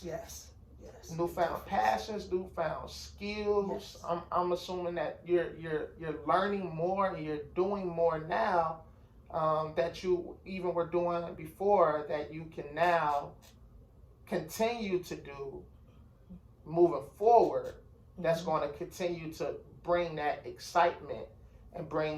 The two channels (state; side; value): identical; both; correlation 1.00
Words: Newfound passions, newfound skills. Yes. I'm assuming that you're learning more and you're doing more now that you even were doing before, that you can now continue to do moving forward. That's Mm-hmm. going to continue to bring that excitement and